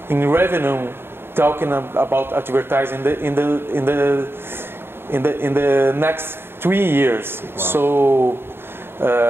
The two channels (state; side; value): late; left; 0.11 ms